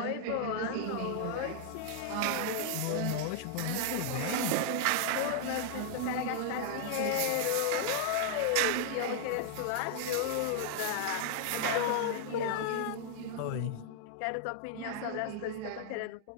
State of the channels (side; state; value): both; different; correlation -0.01